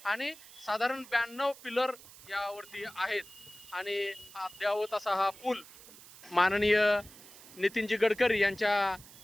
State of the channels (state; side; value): noise; right; hiss, 19 dB below the sound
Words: आणि साधारण 92 पिलर यावरती आहेत. आणि अद्यावत असा हा पूल माननीय नितीनजी गडकरी यांच्या